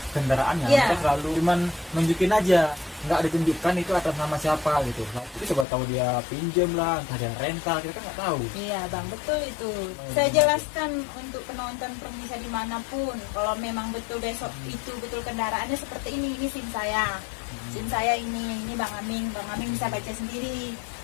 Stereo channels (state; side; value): drops out; right; at 5.7 s